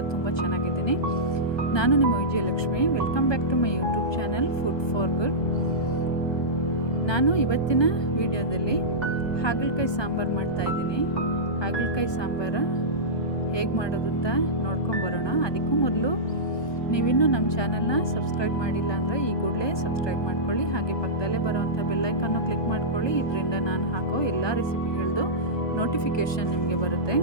ತುಂಬ ಚೆನ್ನಾಗಿದ್ದೀನಿ. ನಾನು ನಿಮ್ಮ Vijayalakshmi. Welcome back to my YouTube channel food for good. ನಾನು ಇವತ್ತಿನ ವಿಡಿಯೋದಲ್ಲಿ ಹಾಗಲಕಾಯಿ ಸಾಂಬಾರು ಮಾಡ್ತಾಯಿದ್ದೀನಿ. ಹಾಗಲಕಾಯಿ ಸಾಂಬಾರು ಹೇಗೆ ಮಾಡೋದು ಅಂತ ನೋಡ್ಕೊಂಬರೋಣ. ಅದಕ್ಕೂ ಮೊದಲು ನೀವಿನ್ನೂ ನಮ್ಮ ಚಾನಲ್ನ ಸಬ್ಸ್ಕ್ರೈಬ್ ಮಾಡಿಲ್ಲ ಅಂದರೆ ಈ ಕೂಡಲೇ ಸಬ್ಸ್ಕ್ರೈಬ್ ಮಾಡ್ಕೊಳ್ಳಿ. ಹಾಗೆ ಪಕ್ಕದಲ್ಲೇ ಬರೋವಂಥ ಬೆಲ್ಲೈಕನ್ನು ಕ್ಲಿಕ್ ಮಾಡ್ಕೊಳ್ಳಿ. ಇದರಿಂದ ನಾನು ಹಾಕೋ ಎಲ್ಲ ರೆಸಿಪಿಗಳದ್ದು ನೋಟಿಫಿಕೇಷನ್ ನಿಮಗೆ ಬರುತ್ತೆ.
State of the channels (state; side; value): late; right; 1.2 ms